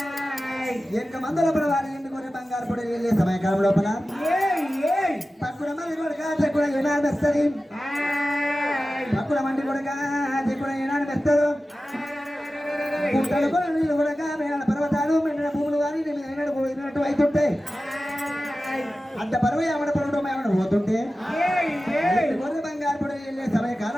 ఎనక మందల పడవారి ఎండుకొర్రె బంగారు పొడి వెళ్ళే సమయకాలం లోపల తక్కువ మంది కొడుక తక్కువ ఏనాడు వస్తుంది తక్కువ మంది కొడుక తక్కువ ఏనాడు వస్తారు పుట్టలు కూడా నీళ్ళు కొడక మేడ పర్వతాలు మెండిన భూములు కానీ ఏనాడు పోయినట్టు అవుతుంటే అంత పరువు ఏమడ పరువు ఏమడ పోతుంటే గొర్రె బంగారు పొడి వెళ్ళే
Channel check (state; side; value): normal; both; correlation 0.95